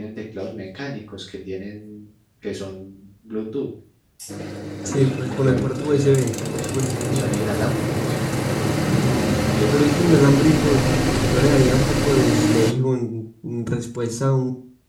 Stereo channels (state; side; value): identical; both; correlation 1.00